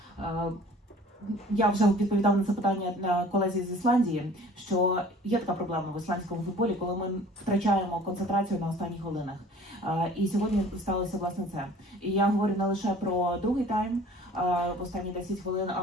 я вже відповідав на це питання на колезі з Ісландії, що є така проблема в ісландському футболі, коли ми втрачаємо концентрацію на останніх хвилинах. І сьогодні сталося власне це. І я говорю не лише про другий тайм, в останні 10 хвилин,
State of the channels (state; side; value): normal; both; correlation 0.49